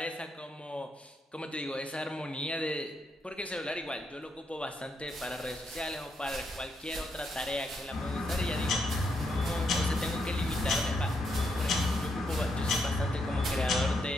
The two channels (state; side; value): normal; both; correlation 0.79